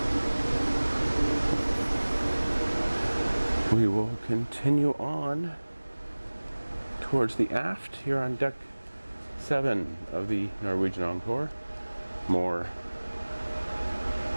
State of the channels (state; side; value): inverted; both; correlation -1.00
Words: We will continue on towards the aft here on deck 7 of the Norwegian Encore. More